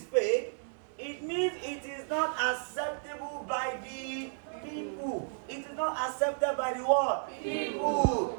fake, it means it is not acceptable by the people. It is not accepted by the what? People.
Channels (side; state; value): left; silent; 56 dB below the other